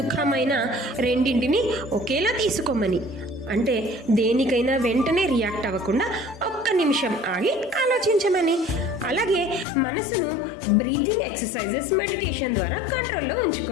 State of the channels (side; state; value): right; drops out; at 9.7 s